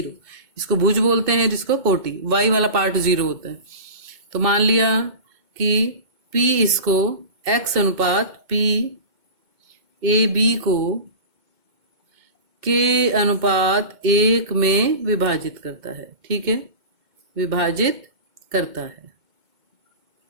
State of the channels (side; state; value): left; late; 2.2 ms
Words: इसको भुज बोलते हैं, जिसको कोटि, y वाला पार्ट 0 होता है। तो मान लिया कि P इसको x अनुपात P AB को k अनुपात 1 में विभाजित करता है, ठीक है, विभाजित करता है।